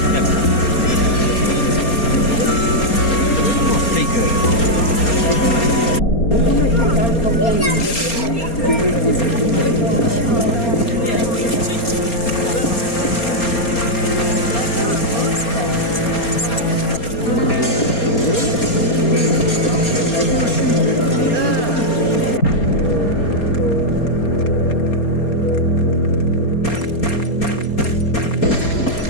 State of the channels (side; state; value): right; late; 4.3 ms